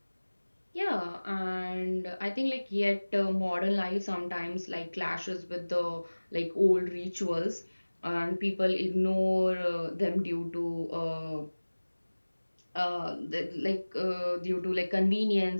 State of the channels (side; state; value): both; inverted; correlation -1.00